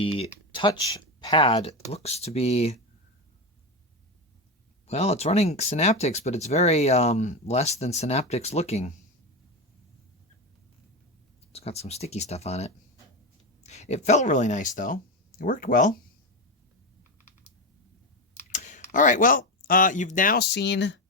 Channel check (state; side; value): normal; both; correlation 0.15